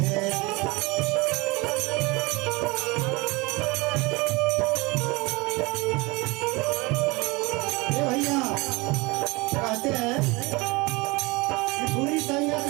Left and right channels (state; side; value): quieter; left; 24.9 dB